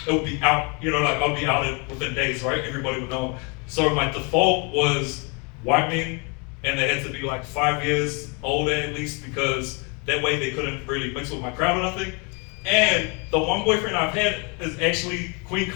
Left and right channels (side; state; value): right; quieter; 32.8 dB